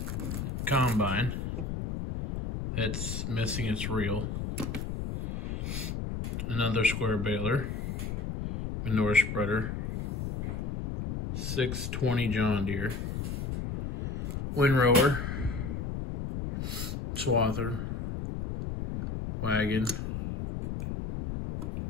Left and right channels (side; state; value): left; noise; rumble, 4 dB below the sound